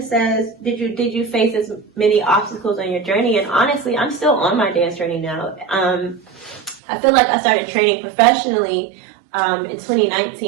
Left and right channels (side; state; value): left; drops out; at 6.8 s